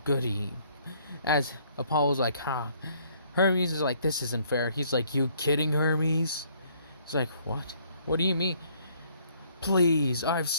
goody. As Apollo's like, ha. Hermes is like, this isn't fair. He's like, you kidding, Hermes? He's like, what? What do you mean? Please, I've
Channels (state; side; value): inverted; both; correlation -0.64